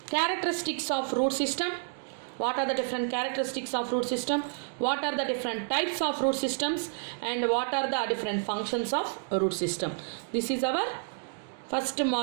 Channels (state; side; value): silent; left; digital silence